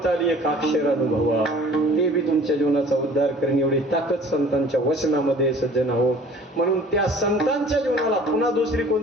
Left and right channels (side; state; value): both; normal; correlation 0.49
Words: आली, एक अक्षर अनुभवा, ते बी तुमच्या जीवनाचा उद्धार करेन. एवढी ताकद संतांच्या वचनामध्ये सज्जन हो. म्हणून त्या संतांच्या जीवनाला पुन्हा दुसरी